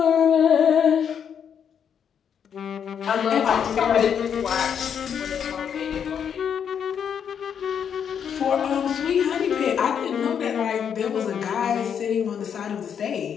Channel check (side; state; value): right; quieter; 7.9 dB